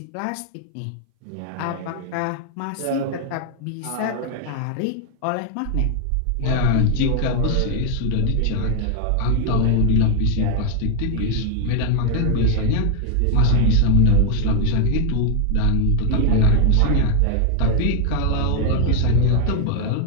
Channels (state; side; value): different; both; correlation 0.01